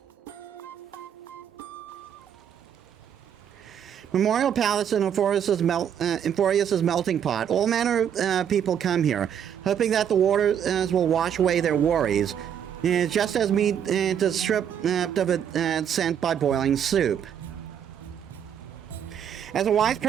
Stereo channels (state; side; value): quieter; left; 8.8 dB